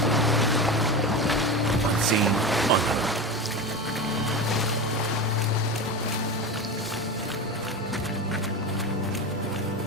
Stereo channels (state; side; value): normal; both; correlation 0.24